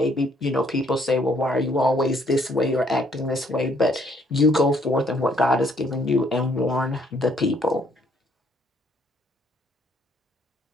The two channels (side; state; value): both; normal; correlation 0.66